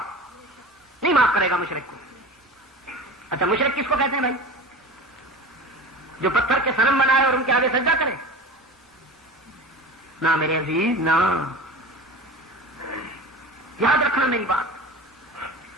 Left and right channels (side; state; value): both; normal; correlation 0.33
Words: نہیں معاف کرے گا مشرک کو. اچھا مشرک کس کو کہتے ہیں بھائی؟ جو پتھر کے صنم بنائے اور ان کے آگے سجدہ کرے؟ نہ میرے عزیز، نہ. یاد رکھنا میری بات،